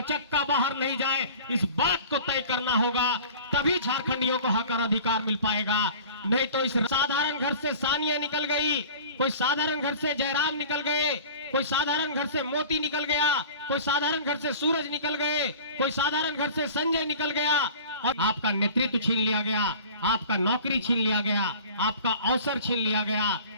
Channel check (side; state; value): both; inverted; correlation -0.42